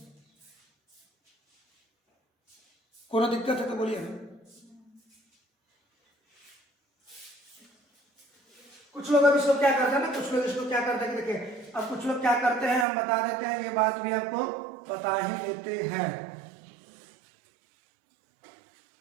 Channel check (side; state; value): left; drops out; at 12.9 s